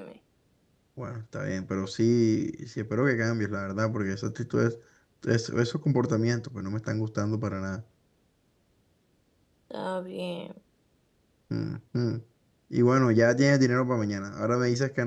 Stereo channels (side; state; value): both; identical; correlation 1.00